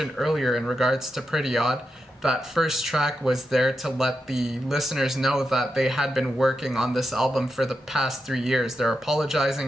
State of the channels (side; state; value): both; normal; correlation 0.87